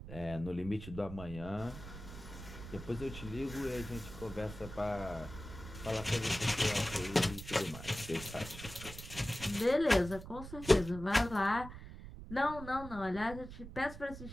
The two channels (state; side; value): noise; right; rumble, 12 dB below the sound